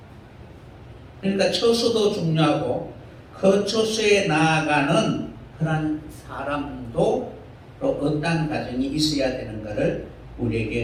그러니까 처소도 중요하고 그 처소에 나아가는 그런 사람도 또 어떤 과정이 있어야 되는가를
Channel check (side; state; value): both; identical; correlation 1.00